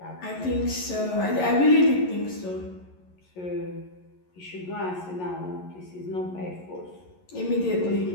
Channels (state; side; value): late; right; 11 ms